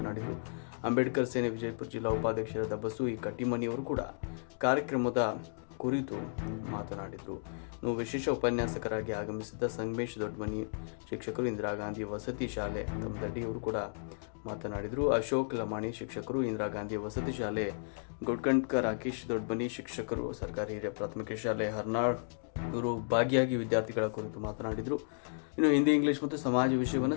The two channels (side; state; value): right; silent; digital silence